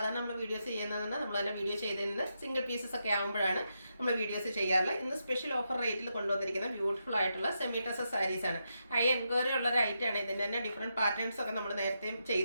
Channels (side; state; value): both; inverted; correlation -0.84